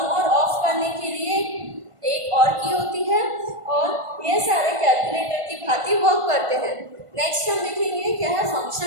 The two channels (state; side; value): late; left; 1.5 ms